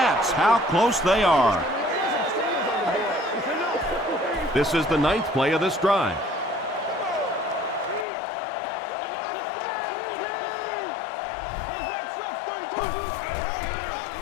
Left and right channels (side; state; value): right; drops out; at 8.1 s